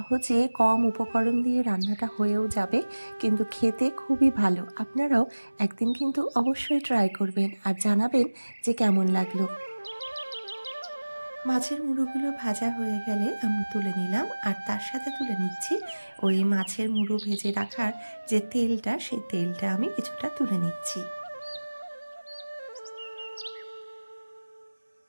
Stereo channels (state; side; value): inverted; both; correlation -1.00